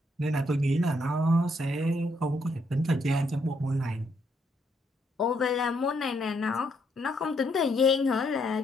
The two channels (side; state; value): both; normal; correlation 0.74